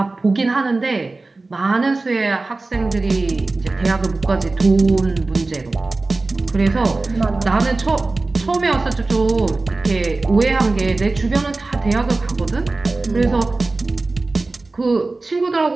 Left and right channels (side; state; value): left; quieter; 3.4 dB